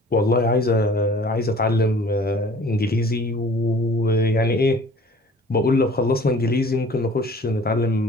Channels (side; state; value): both; normal; correlation 0.49